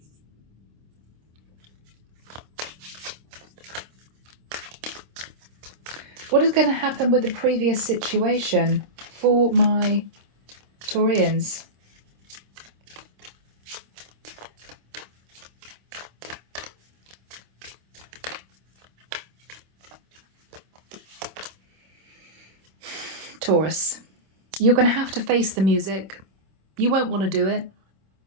What is going to happen with the previous situation for my Taurians? Taurus, you're going to have to face the music. You won't want to do it.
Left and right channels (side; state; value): left; late; 26 ms